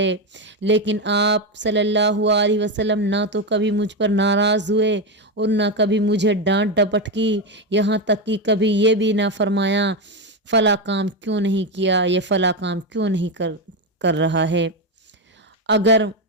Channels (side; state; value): both; normal; correlation 0.10